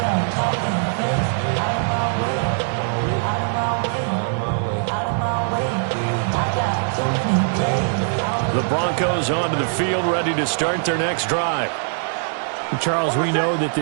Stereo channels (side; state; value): left; silent; 65 dB below the other